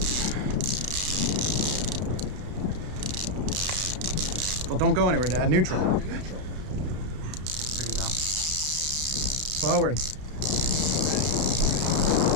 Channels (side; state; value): left; late; 33 ms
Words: Well, don't go anywhere, Dad. Neutral. There you go. Forward.